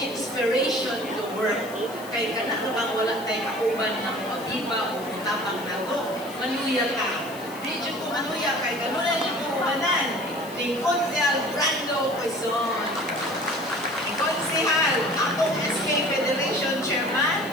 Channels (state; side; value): noise; left; hiss, 17 dB below the sound